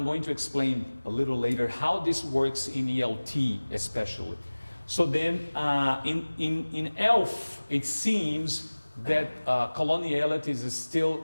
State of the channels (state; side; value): inverted; both; correlation -1.00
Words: going to explain a little later how this works in ELT especially. So then in ELF, it seems that coloniality is still